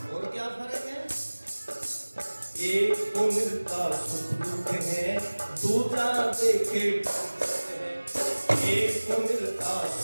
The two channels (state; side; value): inverted; both; correlation -1.00